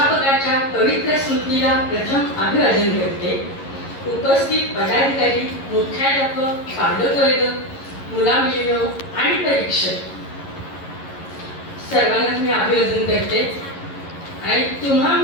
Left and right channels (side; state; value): right; late; 11 ms